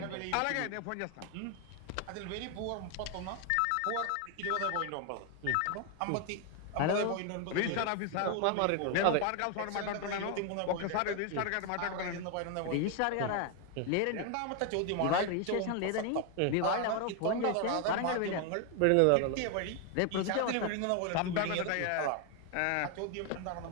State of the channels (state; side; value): different; both; correlation 0.01